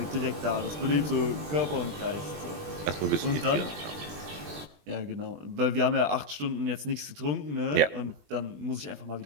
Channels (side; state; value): left; late; 20 ms